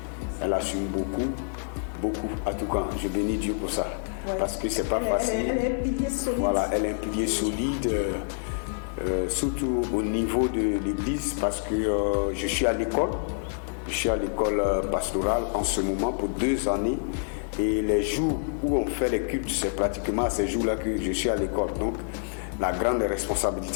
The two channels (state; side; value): silent; right; 60 dB below the other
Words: Elle assume beaucoup. En tout cas, je bénis Dieu pour ça. Ouais. Parce que c'est pas facile. Elle est un pilier solide. Voilà, elle est un pilier solide, surtout au niveau de l'église, parce que je suis à l'école. Je suis à l'école pastorale en ce moment pour 2 années. Et les jours où on fait les cultes, c'est pratiquement à ces jours-là que je suis à l'école. Donc, la grande